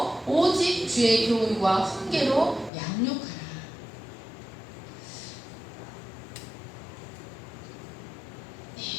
오직 주의 교훈과 훈계로 양육하라.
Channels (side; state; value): right; drops out; at 2.7 s